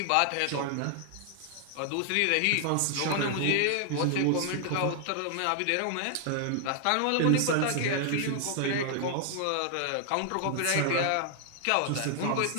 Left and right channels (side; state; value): both; different; correlation 0.00